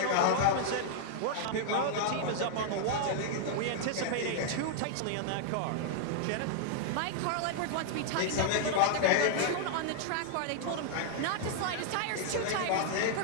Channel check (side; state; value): both; different; correlation -0.01